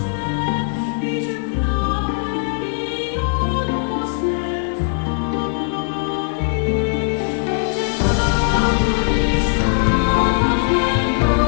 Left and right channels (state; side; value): silent; right; digital silence